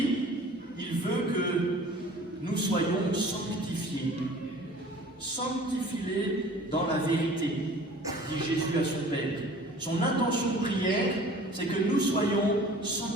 il veut que nous soyons sanctifiés. Sanctifie-les dans la vérité, dit Jésus à son Père. Son intention de prière, c'est que nous soyons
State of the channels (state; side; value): normal; both; correlation 0.47